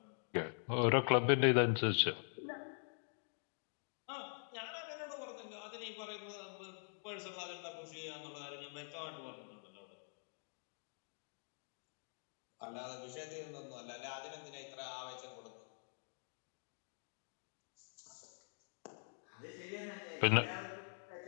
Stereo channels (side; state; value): right; silent; digital silence